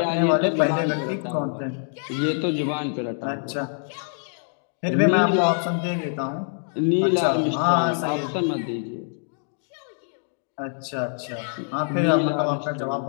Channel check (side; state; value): right; silent; 62 dB below the other